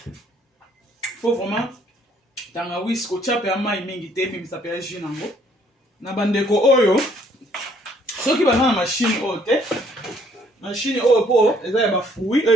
faut vraiment tangawis kotia mpe ya mai mingi te ebimisa mpe ya jus nango na bandeko oyo soki baza na mashine oyo te mashine oyo mpo eza ya bafruit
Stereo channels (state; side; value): normal; both; correlation 0.64